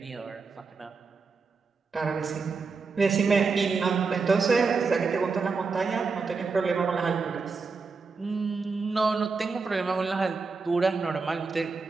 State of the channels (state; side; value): quieter; left; 4.6 dB